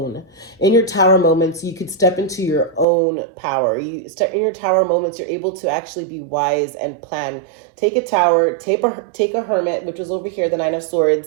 In your tower moments, you could step into your own power. You step in your tower moments, you're able to actually be wise and plan. Take a tower, take a hermit, which was over here, the Nine of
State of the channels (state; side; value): drops out; left; at 2.9 s